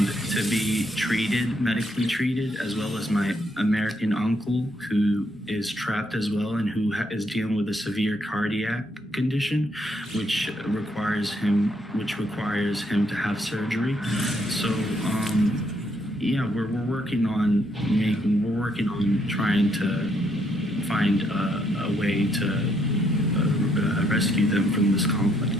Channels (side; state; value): both; normal; correlation 0.73